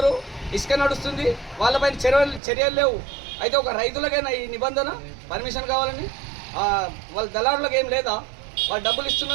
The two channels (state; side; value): drops out; left; at 2.4 s